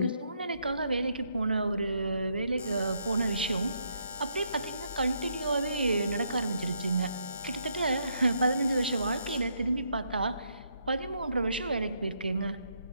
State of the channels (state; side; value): inverted; both; correlation -0.75